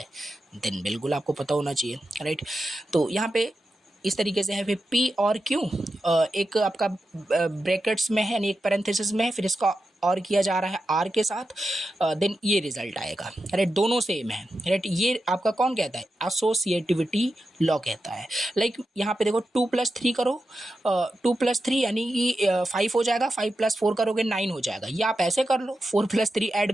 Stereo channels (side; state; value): both; normal; correlation 0.90